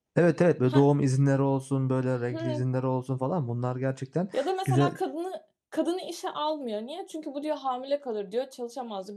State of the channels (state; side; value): identical; both; correlation 1.00